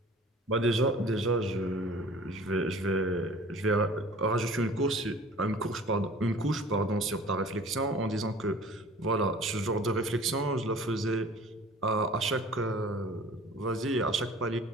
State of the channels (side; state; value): both; normal; correlation 0.46